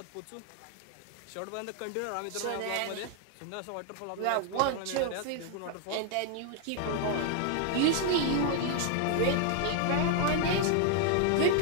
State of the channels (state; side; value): different; both; correlation 0.00